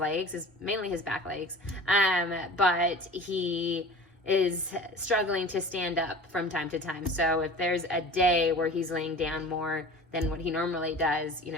mainly his back legs, but he is struggling to stand up from time to time. So if there's a day where he's laying down more than what he normally does,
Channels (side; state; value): both; normal; correlation 0.40